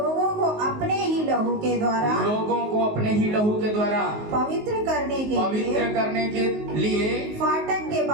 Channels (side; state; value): left; late; 19 ms